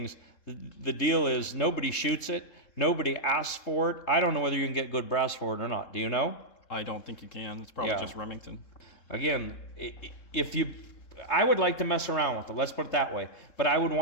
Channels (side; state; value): right; late; 3.7 ms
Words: the deal is nobody shoots it. Nobody asks for it. I don't know whether you can get good brass for it or not. Do you know? I don't think you can. It's probably just Remington. Again, I would like to mess around with it. Let's put it that way. But I would